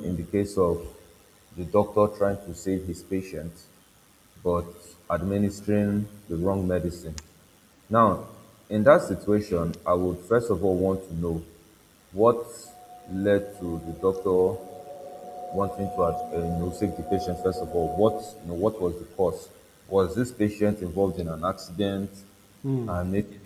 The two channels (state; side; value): identical; both; correlation 1.00